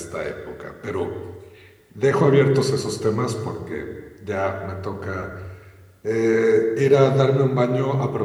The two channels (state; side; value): identical; both; correlation 1.00